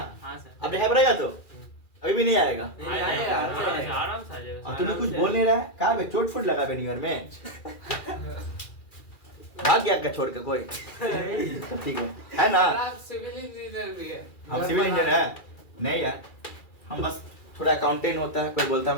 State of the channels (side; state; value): right; late; 2.4 ms